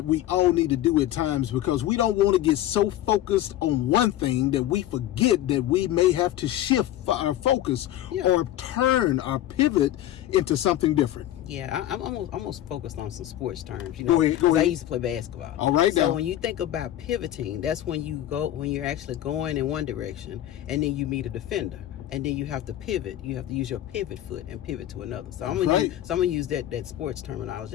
we all need to do at times because we don't want to get so focused on one thing that we forget that we may have to shift our focus or turn our pivot into something different. Yeah, I'm almost focused on some sports terms. Go ahead. I used to play basketball. All right. So when you think about pivoting, that's when you're actually going in one direction and then you meet a defender. And then you have to pivot. You have to use your pivot foot and pivot to another. So I'm gonna use that sports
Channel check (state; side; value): quieter; right; 13.1 dB